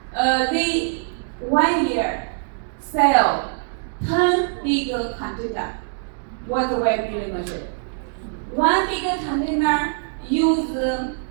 they 1 year sell 10 big container water well drilling machine. One big container use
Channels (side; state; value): left; silent; 63 dB below the other